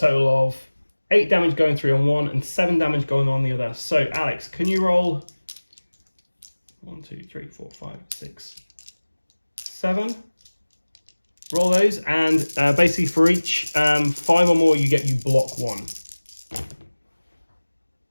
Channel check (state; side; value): inverted; both; correlation -1.00